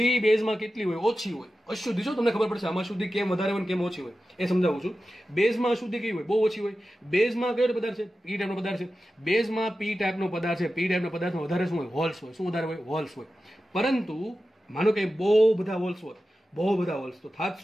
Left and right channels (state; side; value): normal; both; correlation 0.93